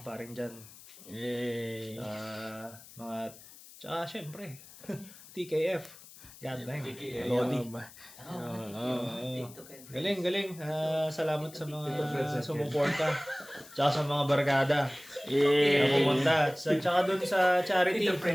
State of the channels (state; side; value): noise; left; hiss, 19 dB below the sound